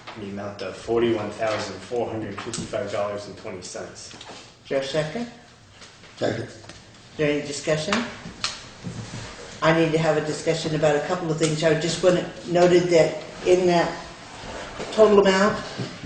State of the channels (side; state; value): both; identical; correlation 1.00